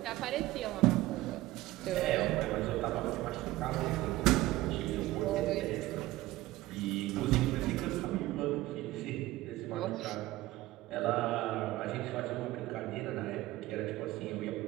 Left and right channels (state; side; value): quieter; left; 17.3 dB